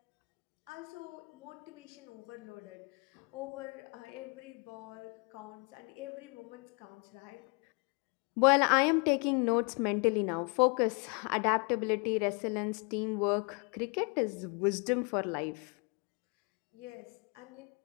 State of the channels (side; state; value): right; quieter; 33.8 dB